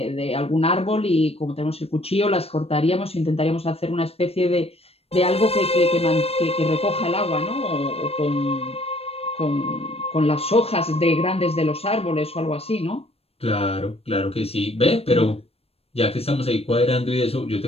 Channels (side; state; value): right; late; 0.29 ms